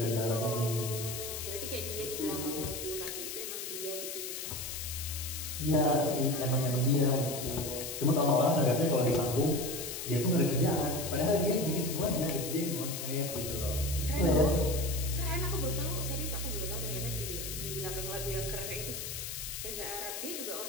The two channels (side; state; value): left; noise; hiss, 6 dB below the sound